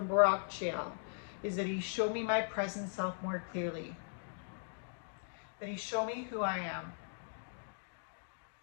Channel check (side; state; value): right; silent; digital silence